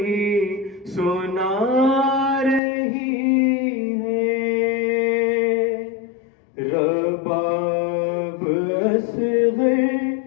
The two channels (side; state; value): right; drops out; at 2.6 s